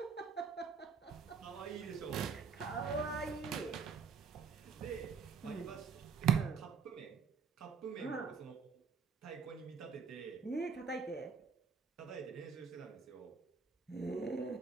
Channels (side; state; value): left; quieter; 5.8 dB